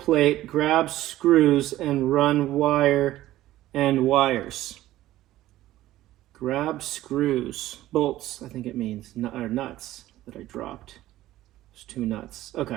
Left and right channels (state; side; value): quieter; left; 15.0 dB